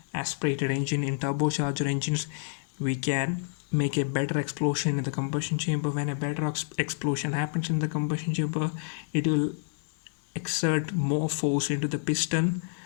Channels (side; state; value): right; silent; digital silence